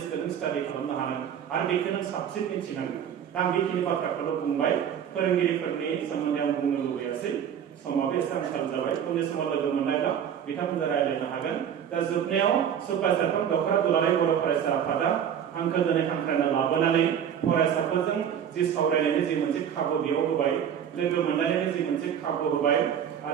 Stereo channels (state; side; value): quieter; left; 8.8 dB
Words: नों स्टाडि खालामनो हानांगोन आरो बेखौ नों साबसिन मिथिनांगोन दा आं बेखिनि बाथ्राखौल' बुंबाय फोरोंगिरिफोरनि सोमोन्दै आं बुंनो लुबैयासै समाबो एसे आंखाल जाबाय उननि समाव लोगो मोननायब्ला बिथांमोनजों रायज्लायनो हागोन दा जोबनायाव सुपारसारफोर दखरा दुलाराय बर' फरायसा आफादा आंखौ दिनै हांख्रायना लाबोनानै फरायसाफोरजों जि सावरायनायनि जि मोनसे खाबु बेयाव होबाय लोगो मोनलायनायनि जि मोनसे खाबु होबाय